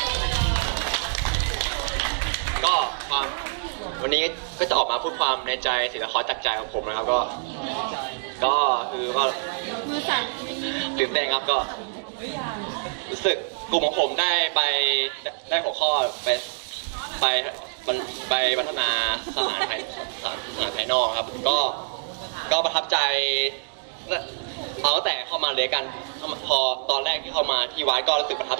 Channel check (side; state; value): left; silent; digital silence